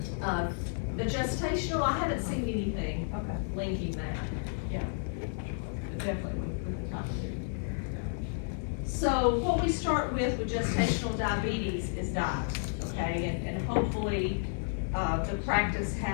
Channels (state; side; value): silent; right; digital silence